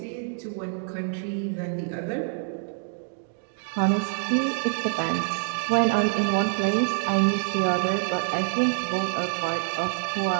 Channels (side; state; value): left; silent; digital silence